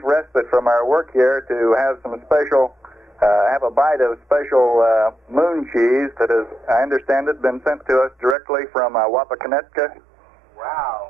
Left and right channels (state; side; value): drops out; left; at 8.3 s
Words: respite from our work here to have some special, have a bite of special moon cheese that has, I understand it, been sent to us directly from Wapakoneta. Wow.